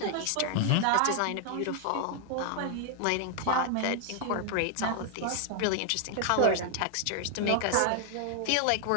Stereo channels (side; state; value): both; different; correlation 0.00